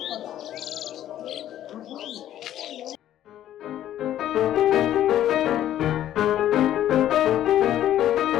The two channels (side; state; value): right; quieter; 12.0 dB